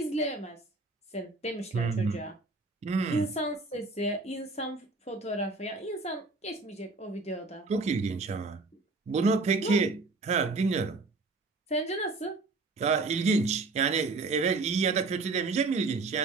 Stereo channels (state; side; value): quieter; left; 3.6 dB